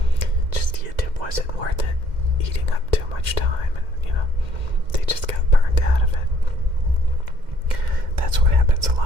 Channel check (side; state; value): left; late; 2.1 ms